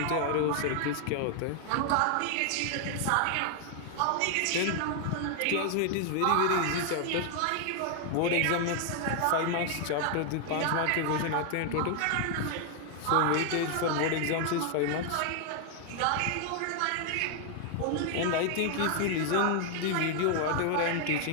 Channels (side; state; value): both; different; correlation 0.00